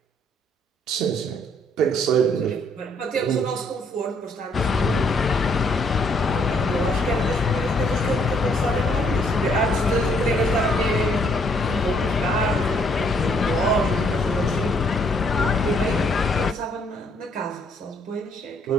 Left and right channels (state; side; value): normal; both; correlation 0.67